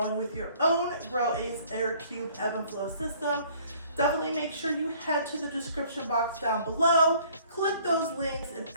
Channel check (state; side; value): inverted; both; correlation -0.56